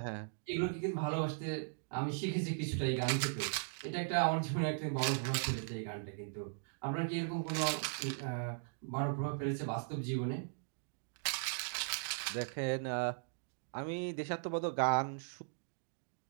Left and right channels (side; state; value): left; silent; digital silence